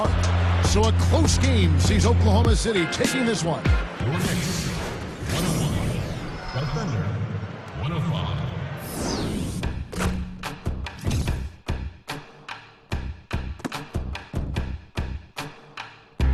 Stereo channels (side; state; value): both; identical; correlation 1.00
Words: So a close game sees Oklahoma City taking this one.